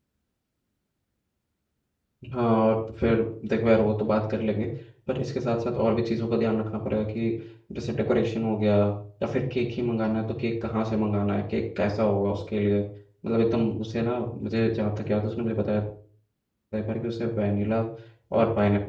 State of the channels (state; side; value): identical; both; correlation 1.00